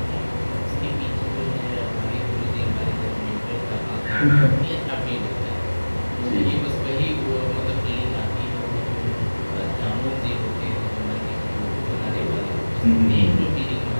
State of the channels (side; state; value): both; inverted; correlation -1.00